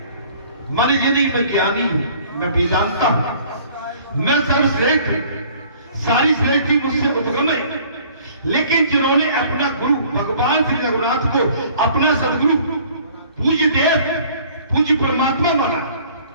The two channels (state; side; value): inverted; both; correlation -0.54